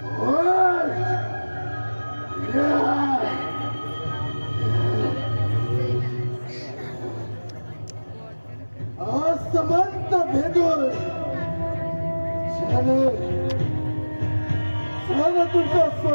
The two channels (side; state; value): both; inverted; correlation -1.00